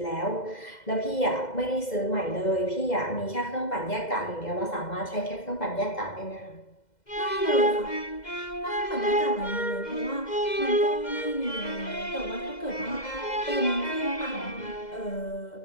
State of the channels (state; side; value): late; right; 2.0 ms